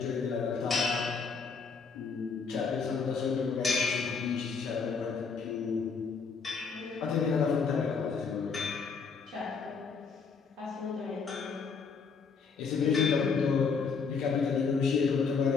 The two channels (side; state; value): right; quieter; 5.3 dB